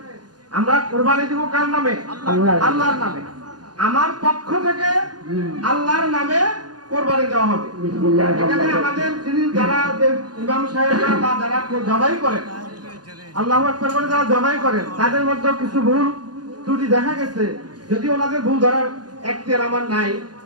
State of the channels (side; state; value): left; late; 0.70 ms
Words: আমরা কোরবানি দিব কার নামে? আল্লাহর নামে। আমার পক্ষ থেকে আল্লাহর নামে কোরবানি দেওয়া হবে। এখানে আমাদের যিনি যারা ইমাম সাহেবরা বা যারা জবাই করেন, আল্লাহু আকবার বলে যারা জবাই করেন, তাদের মধ্যে কিছু ভুল ত্রুটি দেখা গেছে। যদি ওনাদের ভুল ধরার এখতিয়ার আমার নাই,